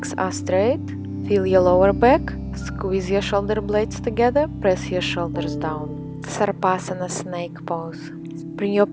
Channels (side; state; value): both; identical; correlation 1.00